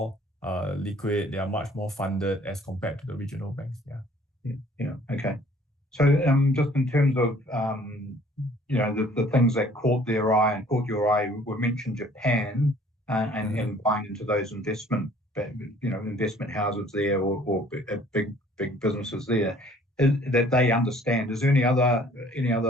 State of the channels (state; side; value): normal; both; correlation 0.56